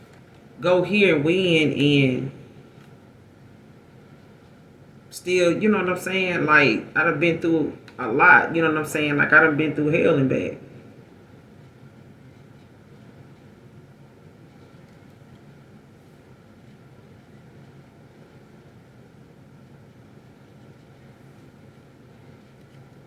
go here and win and still, you know what I'm saying? Like I done been through a lot, you know what I'm saying? Like I done been through hell and back.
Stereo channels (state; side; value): identical; both; correlation 1.00